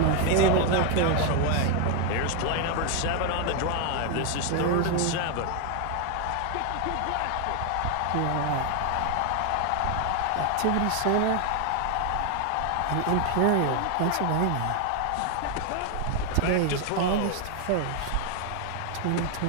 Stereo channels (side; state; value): both; different; correlation 0.01